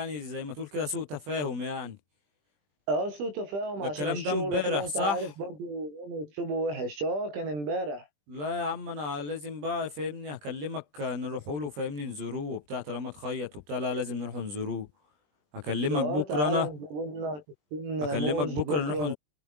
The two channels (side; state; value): left; late; 20 ms